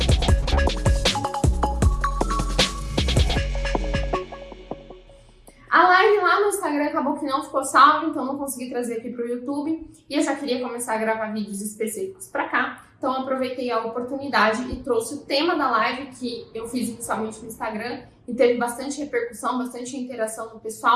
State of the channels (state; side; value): identical; both; correlation 1.00